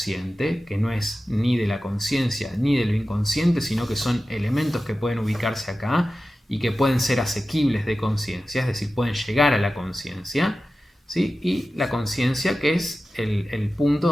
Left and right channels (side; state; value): both; normal; correlation 0.94